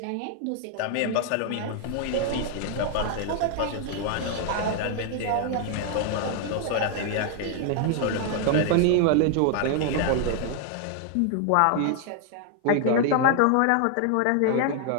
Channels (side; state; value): both; different; correlation 0.00